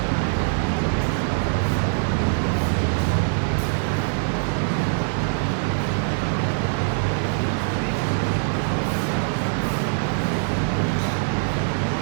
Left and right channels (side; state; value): left; silent; digital silence